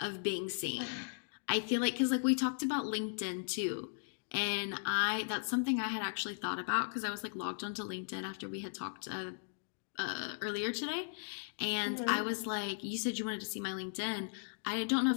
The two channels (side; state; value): right; silent; digital silence